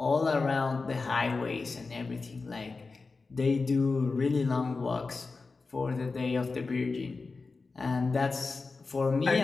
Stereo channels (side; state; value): right; quieter; 4.1 dB